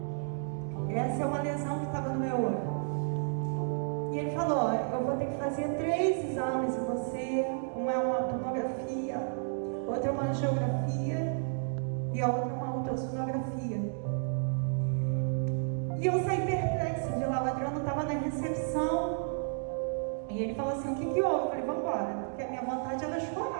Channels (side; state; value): left; silent; digital silence